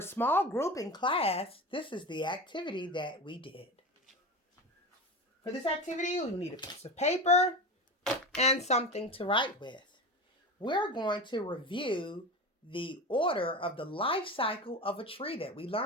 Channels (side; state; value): both; normal; correlation 0.27